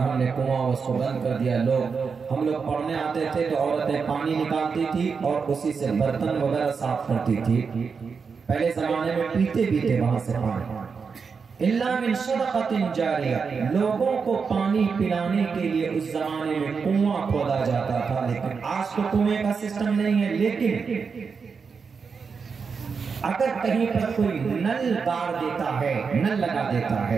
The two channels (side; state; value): left; quieter; 5.5 dB